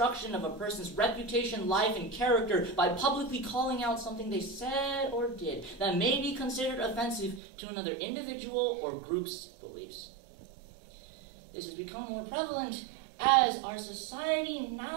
of a person's reputation, life, and character by publicly calling out something they said or did that may be considered offensive to another individual or group's beliefs. This has become more prevalent as our society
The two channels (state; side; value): drops out; left; at 7.4 s